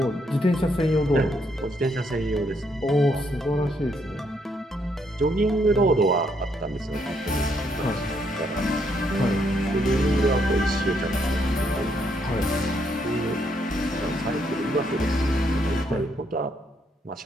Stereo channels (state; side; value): normal; both; correlation 0.74